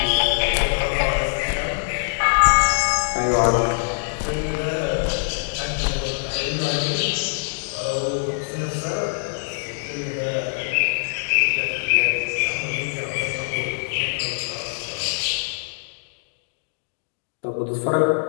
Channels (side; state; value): right; silent; digital silence